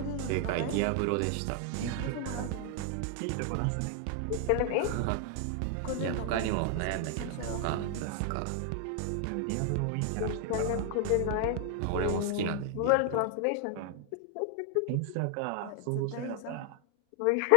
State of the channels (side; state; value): both; different; correlation 0.00